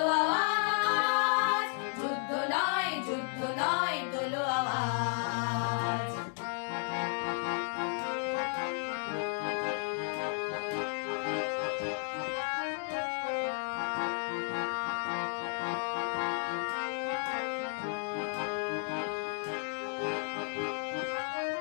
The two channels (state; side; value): silent; right; 56 dB below the other